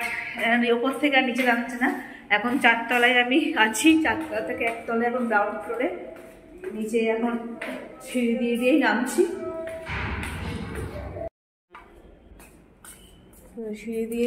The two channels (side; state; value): both; identical; correlation 1.00